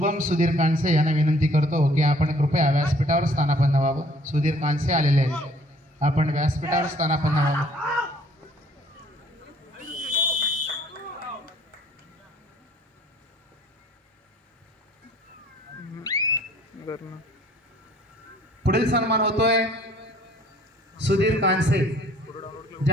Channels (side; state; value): both; normal; correlation 0.57